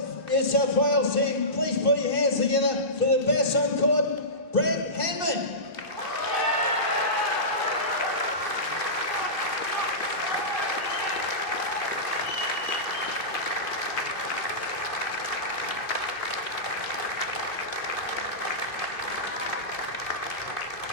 New South Wales team, please put your hands together for the best on court, Brett Hanman.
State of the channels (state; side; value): late; right; 2.6 ms